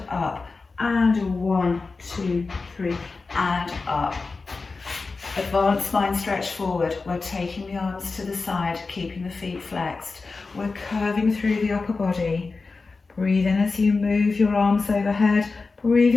up and 1, 2, 3 and up. Advanced spine stretch forward. We're taking the arms to the side, keeping the feet flexed. We're curving through the upper body. Breathe in as you move your arms overhead.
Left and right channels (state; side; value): quieter; right; 4.1 dB